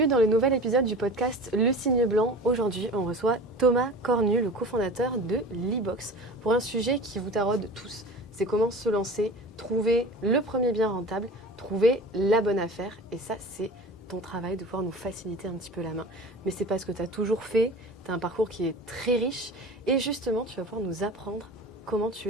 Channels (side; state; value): both; normal; correlation 0.37